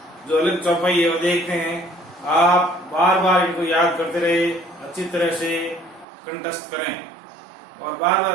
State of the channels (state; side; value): drops out; left; at 6.1 s